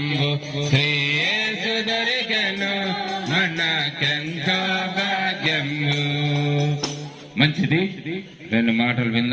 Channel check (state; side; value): identical; both; correlation 1.00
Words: శ్రీయేసు దొరికెను మనకెంతో భాగ్యము. మంచిది, రెండు మాటలు